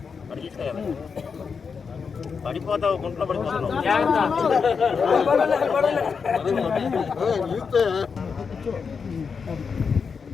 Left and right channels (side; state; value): right; quieter; 5.7 dB